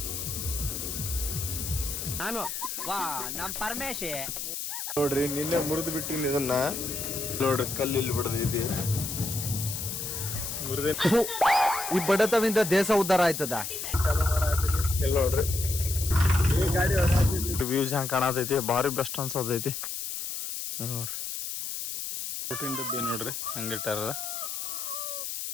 ನಾನು ನಮ್ ಪರಮೇಶಿ ನೋಡ್ರಿ, ನಿನ್ನೆ ಮುರಿದು ಬಿಟ್ಟಿನಿ ಇದನ್ನ. ನೋಡ್ರಿ, ಕಲ್ಲಿಲ್ಲಿ ಬಿಡದಿದೆ ಮುರಿದ. ಈ ಬಡತವಿಂದ ದೇಶ ಉದ್ಧಾರ ಆಯ್ತದ. ಇಲ್ಲಿ ನೋಡ್ರಿ, ಈ ಗಾಡಿ ವ್ಯೂಸ್ ಹೆಂಗ್ ಕಾಣತೈತಿ, ಭಾರಿ ಬೆಸ್ಟ್ ಅನ್ಸತೈತಿ. ನೋಡ್ರಿ, ಊಟಿನ ಡಬ್ಬಿ ನೋಡ್ರಿ ಹಂಗಿಟ್ಟಾರ.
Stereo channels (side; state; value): left; noise; hiss, 5 dB below the sound